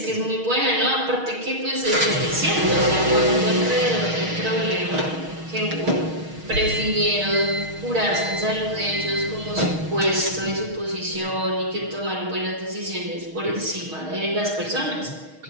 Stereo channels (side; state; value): left; late; 6.4 ms